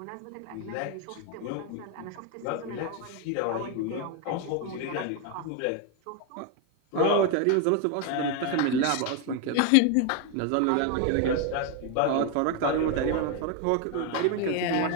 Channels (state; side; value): different; both; correlation 0.01